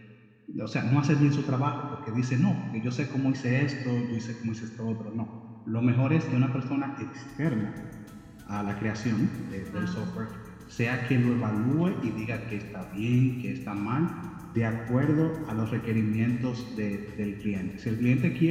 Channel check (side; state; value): both; identical; correlation 1.00